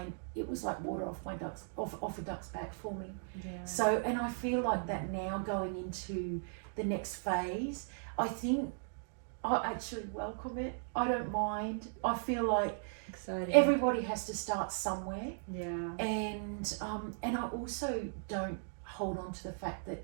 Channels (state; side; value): silent; left; digital silence